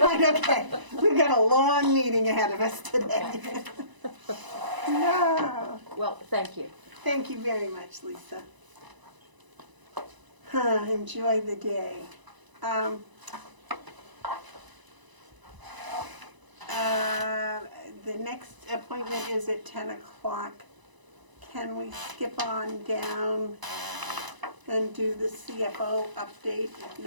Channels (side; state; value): left; late; 1.0 ms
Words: okay. We've got a long meeting ahead of us today. No. Well, thank you. Thank you very much, Lisa. Enjoy the day. The next appointment is at 10 o'clock. Can we skip on down and do the CFO update if